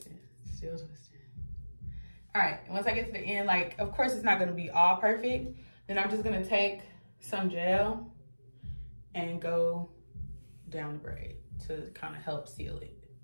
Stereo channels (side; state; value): both; inverted; correlation -1.00